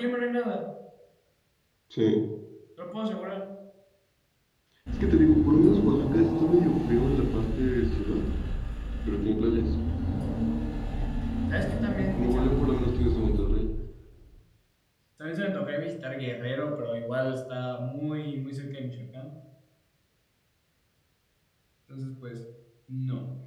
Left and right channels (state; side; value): identical; both; correlation 1.00